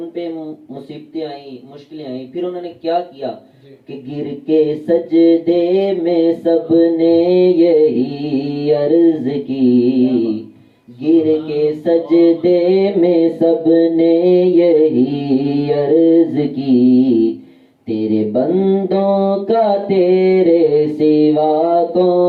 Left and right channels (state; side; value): identical; both; correlation 1.00